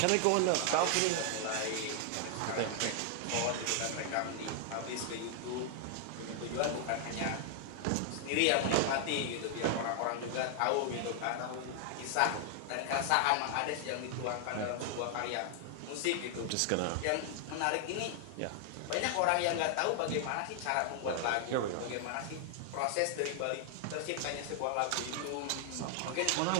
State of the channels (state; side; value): different; both; correlation 0.00